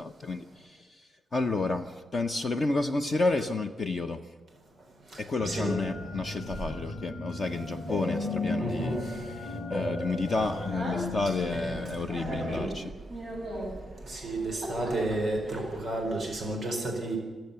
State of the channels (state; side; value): normal; both; correlation 0.82